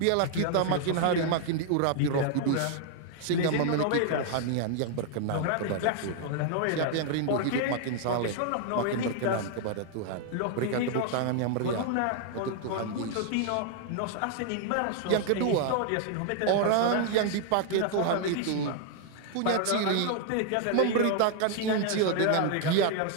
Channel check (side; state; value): both; different; correlation 0.00